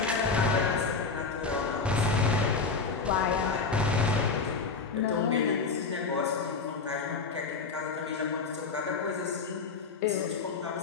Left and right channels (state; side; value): quieter; right; 4.6 dB